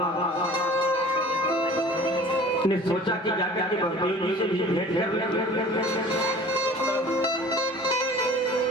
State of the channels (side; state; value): both; normal; correlation 0.45